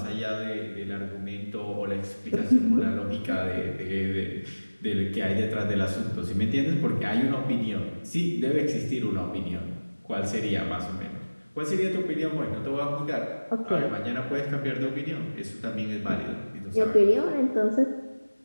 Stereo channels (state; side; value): inverted; both; correlation -1.00